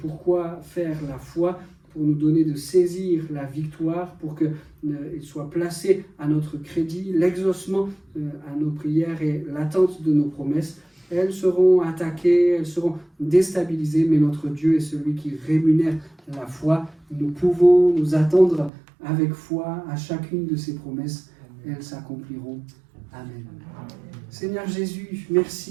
Pourquoi faire la foi? Pour nous donner de saisir la victoire, pour qu'il soit placé à notre crédit, l'exaucement à nos prières et l'attente de nos promesses. Elles seront attaquées, elles seront déstabilisées, mais notre Dieu est celui qui rémunère la foi. Nous pouvons nous attendre avec foi à chacune de ses promesses. Elles s'accompliront. Amen. Seigneur Jésus,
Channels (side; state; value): left; drops out; at 18.7 s